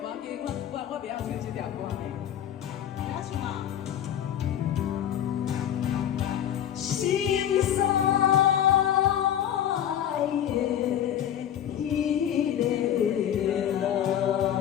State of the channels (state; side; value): quieter; right; 10.3 dB